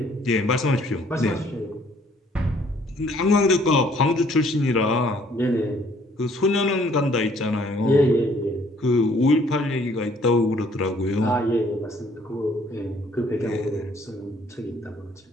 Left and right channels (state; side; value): normal; both; correlation 0.61